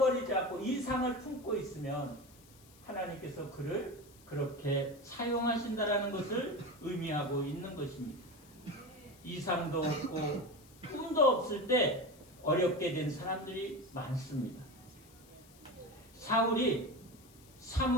않고 이상을 품고 있으면 하나님께서 그를 그렇게 사용하신다라는 것을 의미하고 있는 것입니다. 이상도 없고 꿈도 없을 때 어렵게 된 사람들이 많습니다. 사울이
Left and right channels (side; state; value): left; noise; hiss, 25 dB below the sound